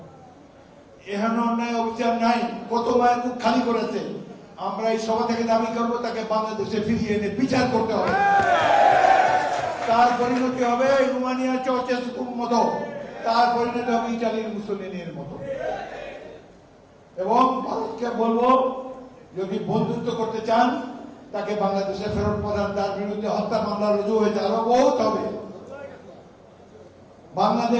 এখানে অন্যায় অবিচার নাই, কত মায়ের মুখ খালি করেছে। আমরা এই সভা থেকে দাবি করবো তাকে বাংলাদেশে ফিরিয়ে এনে বিচার করতে হবে। তার পরিণতি হবে রোমানিয়ার চাউচেস্কুর মতো, তার পরিণতি হবে ইটালির মুসোলিনির মতো। এবং ভারতকে বলবো, যদি বন্ধুত্ব করতে চান তাকে বাংলাদেশে ফেরত পাঠান। তার বিরুদ্ধে হত্যা মামলা রুজু হয়েছে, আরো বহুত হবে।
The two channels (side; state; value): both; identical; correlation 1.00